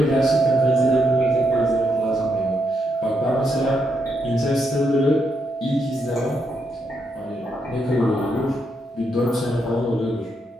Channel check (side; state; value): both; normal; correlation 0.80